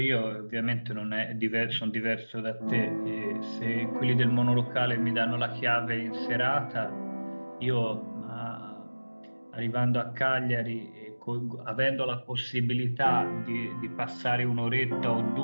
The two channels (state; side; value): inverted; both; correlation -1.00